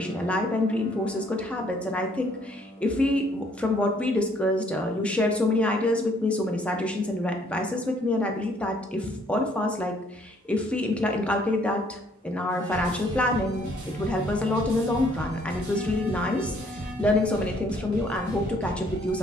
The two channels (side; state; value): both; normal; correlation 0.64